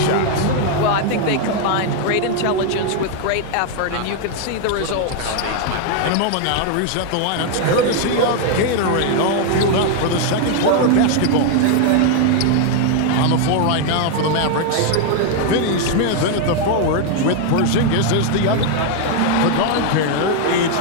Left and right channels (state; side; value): different; both; correlation 0.00